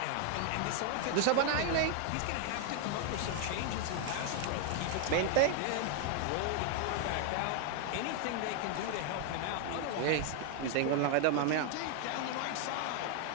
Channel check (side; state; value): both; different; correlation 0.00